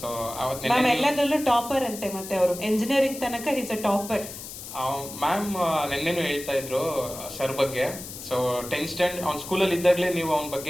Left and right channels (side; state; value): left; noise; hiss, 11 dB below the sound